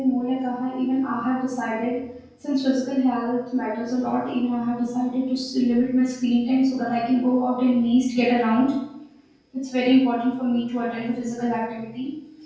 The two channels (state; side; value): identical; both; correlation 1.00